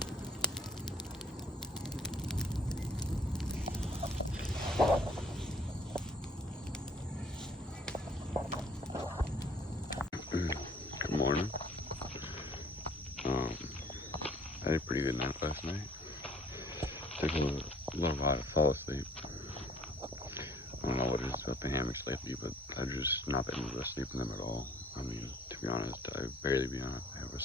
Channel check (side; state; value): both; normal; correlation 0.57